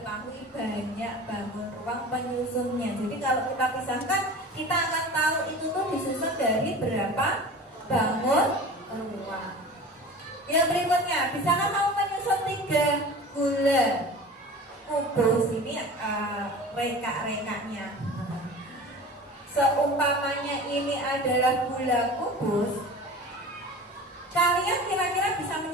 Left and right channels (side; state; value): both; normal; correlation 0.37